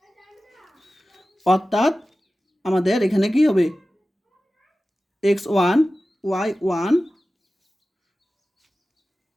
অর্থাৎ আমাদের এখানে কি হবে, x1 y1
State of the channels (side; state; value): both; normal; correlation 0.95